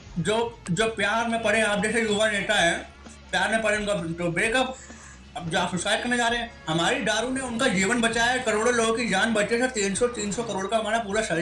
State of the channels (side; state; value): both; identical; correlation 1.00